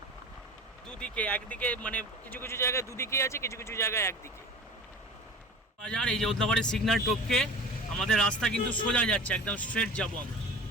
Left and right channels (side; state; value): both; normal; correlation 0.36